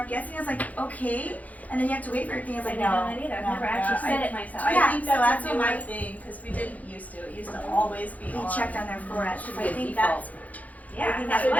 guessing. I was like, okay. And then you have to wait for everything. I was I like, didn't no. know that either. I've no. never actually Yeah, said it myself. I Yeah, think so that's that's a what newer my- thing because we didn't used to. It used to always be We on. checked on their foreheads. So I Good think default. that's I Yeah, think that's that's what what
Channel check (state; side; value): late; right; 0.075 ms